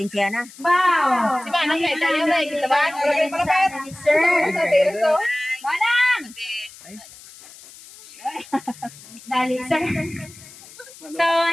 Wow. Si Manang kaya tayo na. Kita ba? Malapit, malapit. Sir. Sa terso. Manang! Dali, sir. So,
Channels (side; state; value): left; noise; hiss, 20 dB below the sound